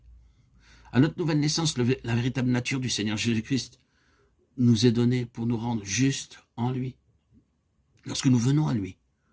À notre nouvelle naissance, la véritable nature du Seigneur Jésus-Christ nous est donnée pour nous rendre justes en lui. Lorsque nous venons à lui,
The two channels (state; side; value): identical; both; correlation 1.00